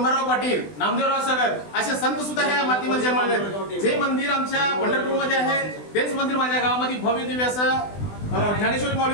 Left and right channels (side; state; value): right; late; 20 ms